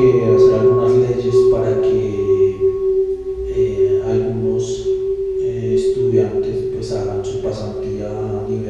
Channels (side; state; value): both; identical; correlation 1.00